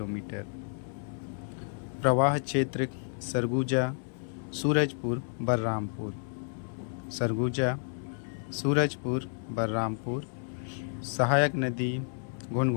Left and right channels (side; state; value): right; silent; 57 dB below the other